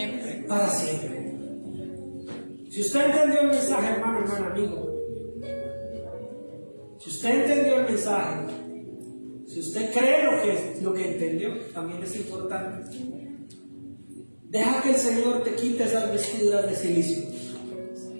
Para siempre. Si usted entendió el mensaje, hermano, amigo. Si usted entendió el mensaje, si usted cree lo que entendió, también es importante. Deja que el Señor te quite esas vestiduras de silicio.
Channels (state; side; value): inverted; both; correlation -1.00